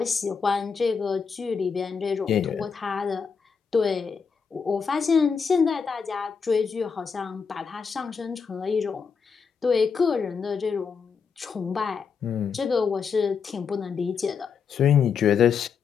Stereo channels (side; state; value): right; quieter; 6.0 dB